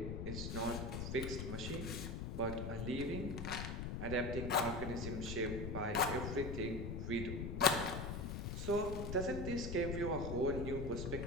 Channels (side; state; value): left; noise; rumble, 4 dB below the sound